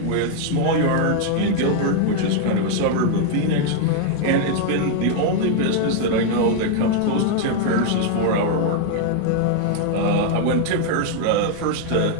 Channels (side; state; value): both; different; correlation 0.00